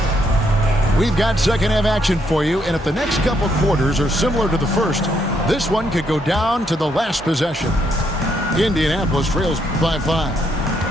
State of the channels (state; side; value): normal; both; correlation 0.74